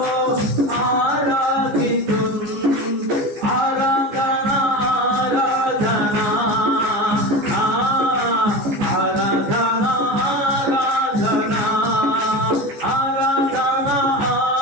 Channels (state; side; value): late; left; 15 ms